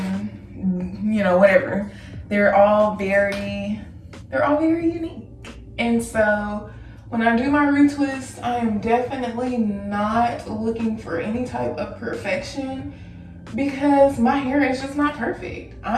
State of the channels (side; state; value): both; identical; correlation 1.00